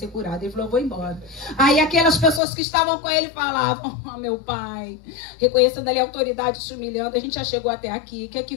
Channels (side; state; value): right; drops out; at 2.4 s